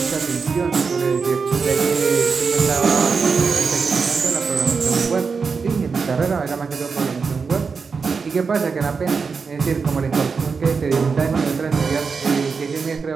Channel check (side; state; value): left; quieter; 5.2 dB